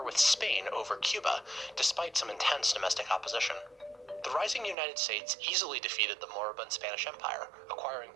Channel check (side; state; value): left; drops out; at 4.8 s